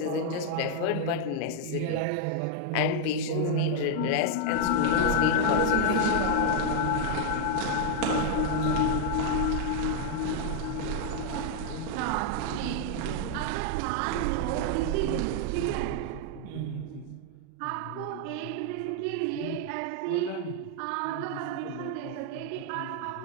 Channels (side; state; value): both; different; correlation 0.00